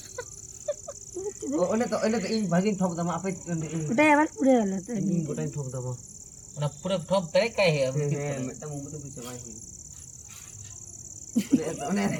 ওনে তো ইন ভাগিন ঠক দাম আপে ওটা আবার পুড়ে গেল তো ইন গোটাই ঠক দাম ওনা পুরো ঠপ করে কাই হে মেটা মুমতে পিছে ভাই ওনে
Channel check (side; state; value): right; noise; hum, 30 dB below the sound